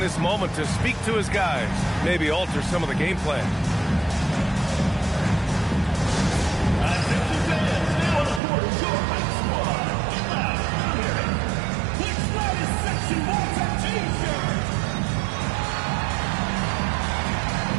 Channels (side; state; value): left; drops out; at 8.4 s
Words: moment to speak to his guys, maybe alter some of the game plan.